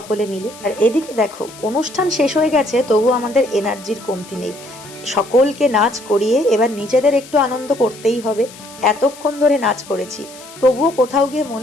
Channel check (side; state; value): left; noise; hiss, 19 dB below the sound